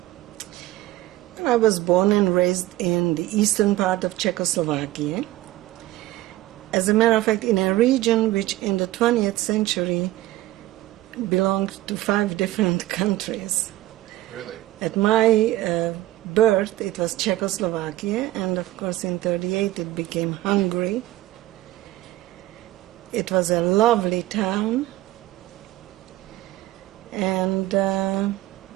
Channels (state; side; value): quieter; left; 16.4 dB